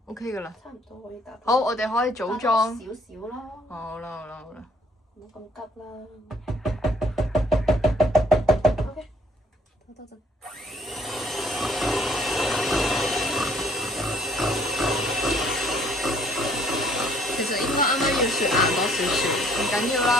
OK 噶啦。差唔多可以打。好，我哋可以組裝。少少咯。好啦。唔好咁急啦。OK。等陣。其實應該啱啱要雪硬多少少，唔緊要啦，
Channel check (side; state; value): both; normal; correlation 0.62